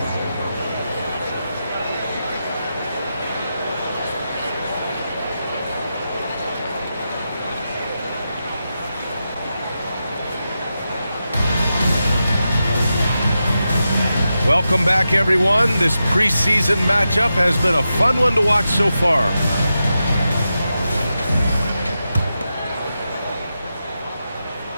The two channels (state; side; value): inverted; both; correlation -0.89